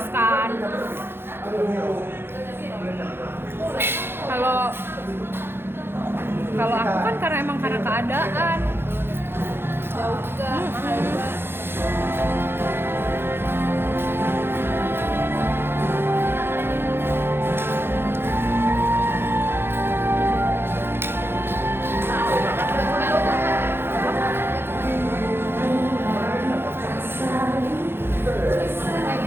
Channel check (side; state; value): left; late; 0.11 ms